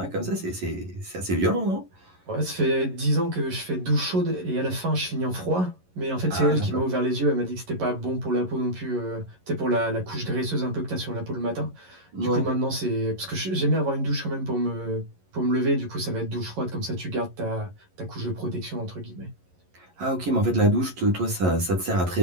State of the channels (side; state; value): left; late; 11 ms